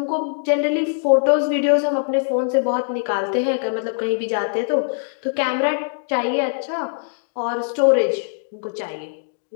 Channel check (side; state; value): right; silent; digital silence